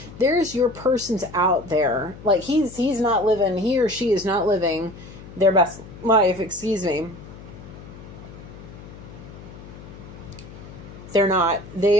There's your persons out there. Like he's not living, he or she is not living their best life, excuse me. They're not.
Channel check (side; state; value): left; noise; hum, 16 dB below the sound